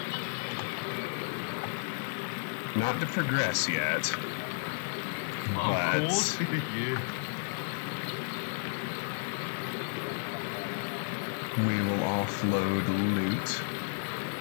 Not to progress yet. But Of course. Yeah. we will offload loot.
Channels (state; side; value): silent; right; 56 dB below the other